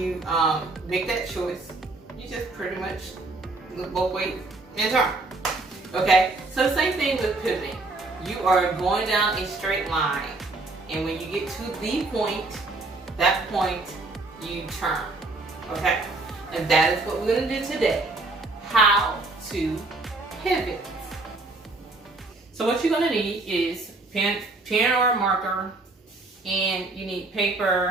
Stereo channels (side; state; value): left; quieter; 3.3 dB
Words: make that choice, you just pretty much look both ways and turn. Okay? So same thing with pivoting. You are going down a straight line, and when you get to the point, that point, you turn. Okay? And that is what we're going to do today. How to pivot. So what you're going to need is pen or a marker, and you need